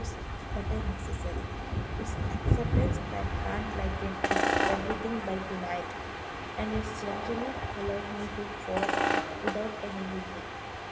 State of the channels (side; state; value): both; identical; correlation 1.00